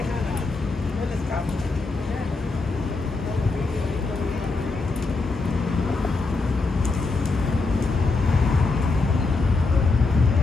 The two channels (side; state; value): right; quieter; 3.7 dB